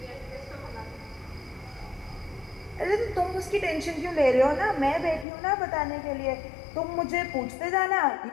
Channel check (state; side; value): drops out; right; at 5.2 s